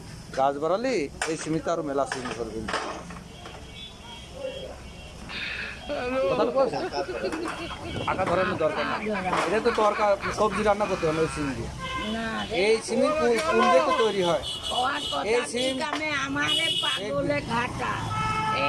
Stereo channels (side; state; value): both; identical; correlation 1.00